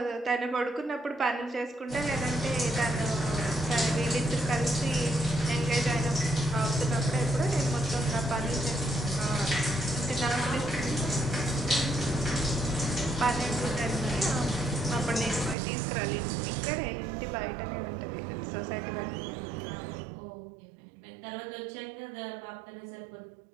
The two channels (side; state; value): left; drops out; at 15.6 s